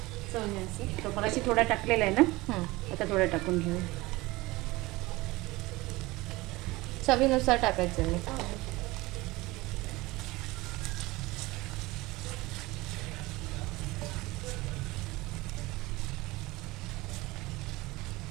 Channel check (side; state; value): left; quieter; 20.9 dB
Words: चवण्याचे. तो मगाशी थोडा टाकलेला आहे ना, आता थोडा टाकून घेऊ. चवीनुसार टाकायचं मी.